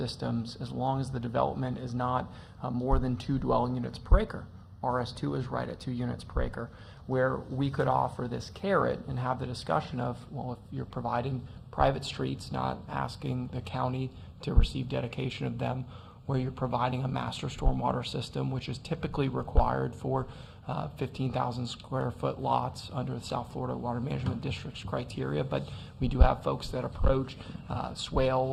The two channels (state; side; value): identical; both; correlation 1.00